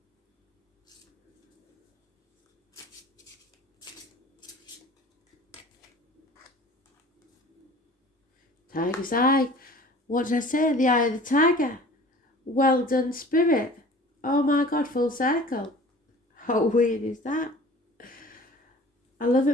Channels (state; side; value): normal; both; correlation 0.45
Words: Tiger's eye. What did I say? The eye of the tiger. Well done, spirit. Oh my God, full circle. How weird is that? I love